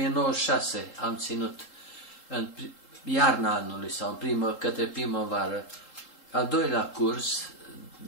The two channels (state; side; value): late; right; 3.7 ms